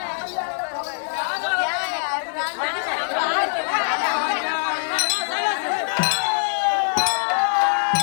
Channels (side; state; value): right; silent; digital silence